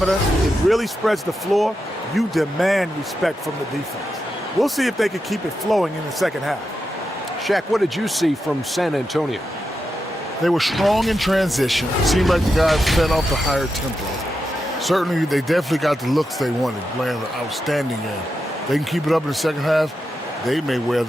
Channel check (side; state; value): both; normal; correlation 0.87